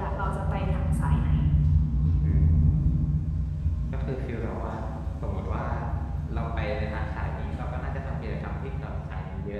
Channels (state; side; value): identical; both; correlation 1.00